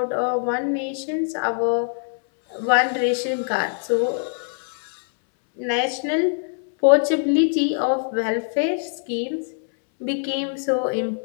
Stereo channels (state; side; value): silent; right; 63 dB below the other